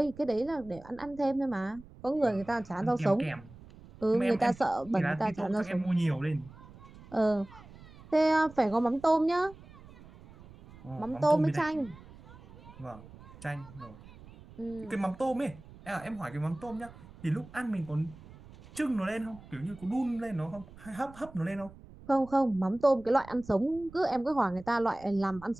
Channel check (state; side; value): noise; right; rumble, 20 dB below the sound